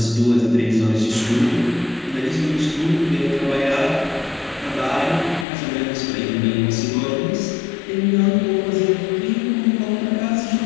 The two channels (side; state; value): right; drops out; at 5.5 s